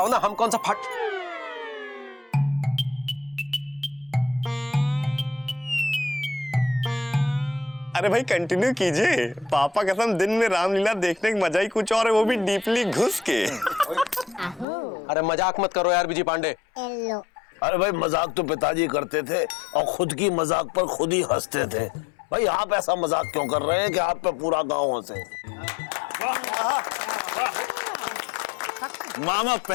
ना, हम कौन सा फट। अरे भाई कंटिन्यू कीजिए। पापा कसम दिन में रामलीला देखने का मजा ही कुछ और है, वो भी डीपली घुस के। अरे मजाक मत करो यार विजय पांडे। अरे भाई मजाक तो पिताजी करते थे और खुद की मजाक पर खुद ही हंसते थे। भाई आप ऐसा मजाक क्यों कर रहे हैं कि आप पे पूरा गांव हंसे? मामा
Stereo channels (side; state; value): right; drops out; at 14.7 s